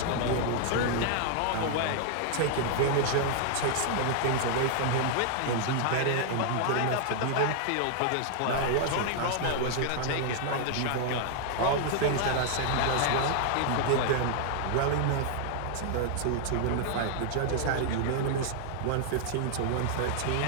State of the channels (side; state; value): both; different; correlation 0.00